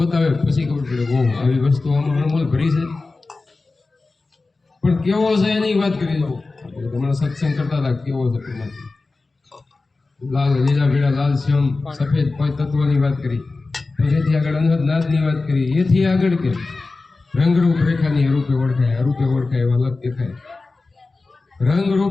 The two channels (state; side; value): quieter; right; 3.6 dB